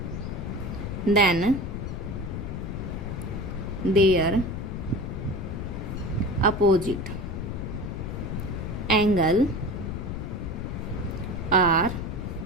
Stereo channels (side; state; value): left; noise; rumble, 5 dB below the sound